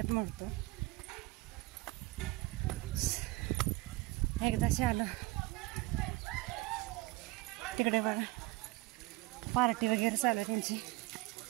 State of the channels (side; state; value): left; quieter; 21.0 dB